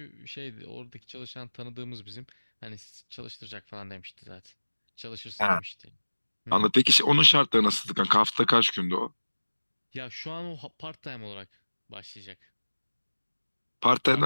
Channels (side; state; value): both; inverted; correlation -1.00